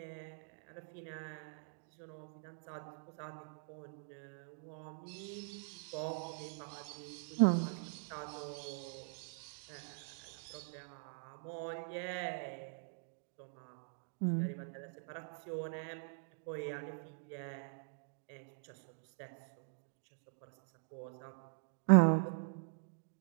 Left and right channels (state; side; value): silent; left; digital silence